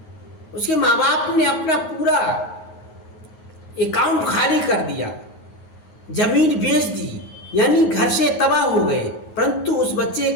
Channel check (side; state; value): right; late; 9.4 ms